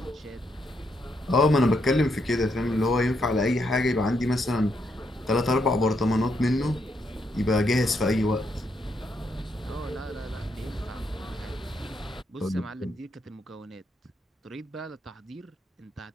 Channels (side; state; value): both; normal; correlation 0.77